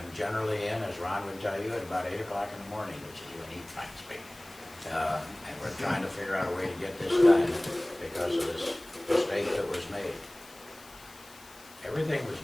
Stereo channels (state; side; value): noise; left; hiss, 21 dB below the sound